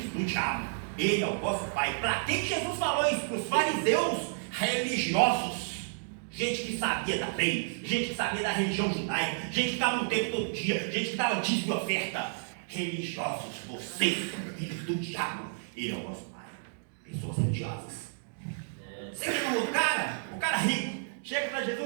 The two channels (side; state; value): left; silent; digital silence